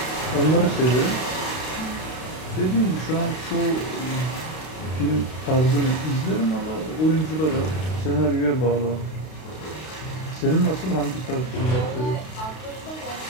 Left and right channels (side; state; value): right; late; 32 ms